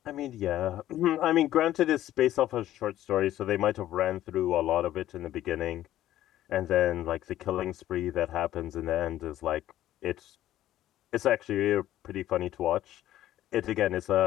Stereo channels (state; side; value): quieter; right; 13.3 dB